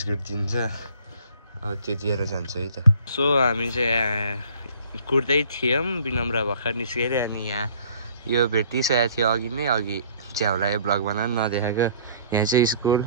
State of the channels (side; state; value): both; inverted; correlation -0.55